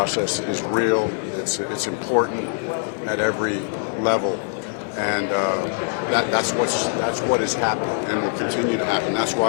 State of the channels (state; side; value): silent; right; 64 dB below the other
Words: is real. It's important at every level, and that's what is happening and will continue to happen. That's